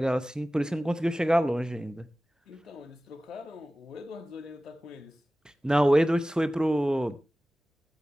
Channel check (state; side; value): normal; both; correlation 0.97